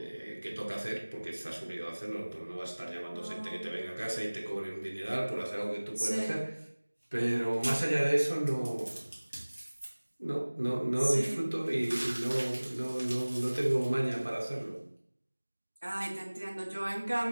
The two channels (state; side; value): inverted; both; correlation -1.00